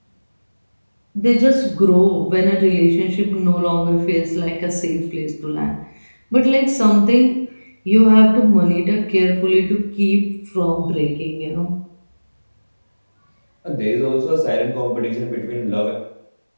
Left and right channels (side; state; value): both; inverted; correlation -1.00